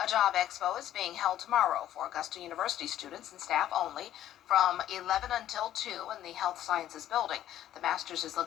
A job expo is being held tomorrow for Augusta University students and staff only from 11 until 2 in the Health Sciences Building. The Masters is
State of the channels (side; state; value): right; quieter; 12.2 dB